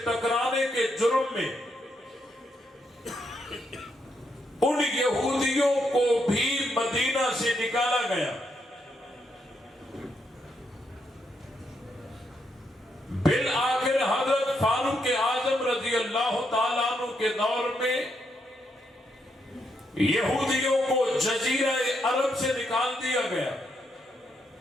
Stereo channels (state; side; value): normal; both; correlation 0.79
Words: ٹکرانے کے جرم میں ان یہودیوں کو بھی مدینہ سے نکالا گیا۔ بالآخر حضرت فاروق اعظم رضی اللہ تعالیٰ عنہ کے دور میں یہودیوں کو جزیرہ عرب سے نکال دیا گیا۔